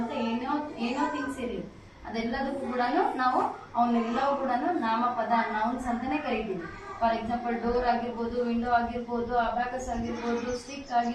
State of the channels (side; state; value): both; identical; correlation 1.00